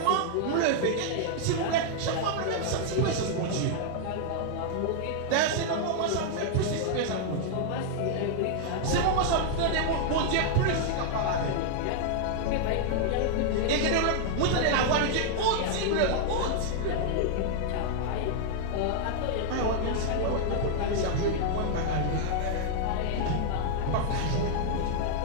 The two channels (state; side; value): different; both; correlation 0.00